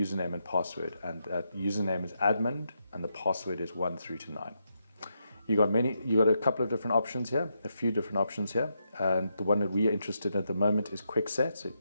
and password, and that username is admin and the password is 1 through to 9. You got a couple of different options here, a few different options here, and the one that we are interested in at the moment is quick set. So you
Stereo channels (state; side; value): inverted; both; correlation -0.82